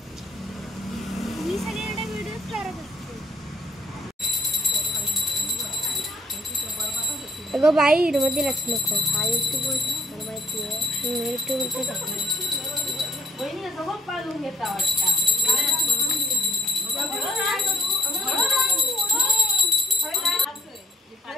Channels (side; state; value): both; normal; correlation 0.65